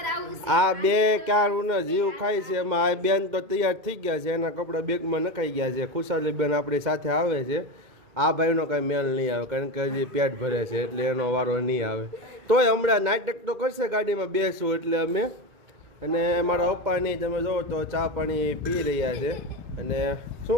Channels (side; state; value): left; late; 2.1 ms